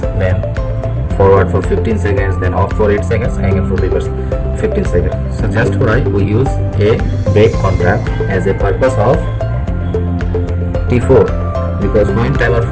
then forward for 15 seconds, then off for 8 seconds, again for reverse 15 seconds. So just why we use a break contact as a purpose of T4, because when timer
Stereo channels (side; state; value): both; identical; correlation 1.00